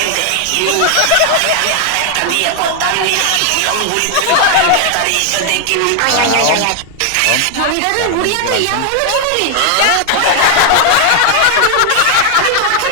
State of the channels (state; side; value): different; both; correlation 0.00